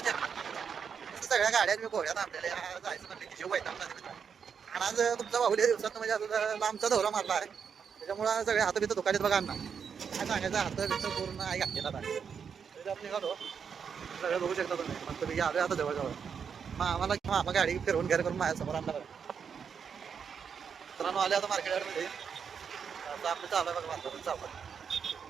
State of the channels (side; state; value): left; quieter; 6.8 dB